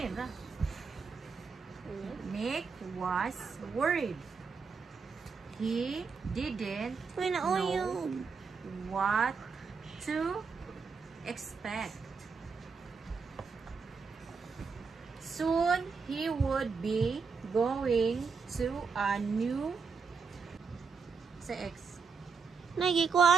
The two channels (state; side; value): quieter; left; 5.3 dB